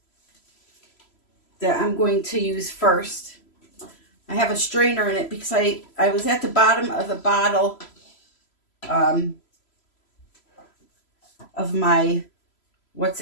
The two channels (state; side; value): late; right; 3.0 ms